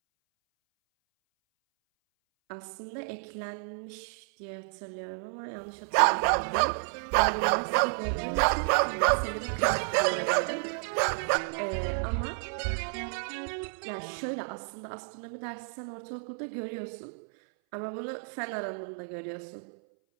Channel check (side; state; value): left; silent; 57 dB below the other